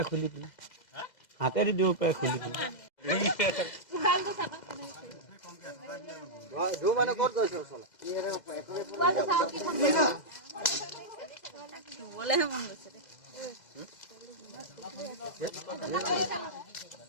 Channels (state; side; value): late; right; 2.0 ms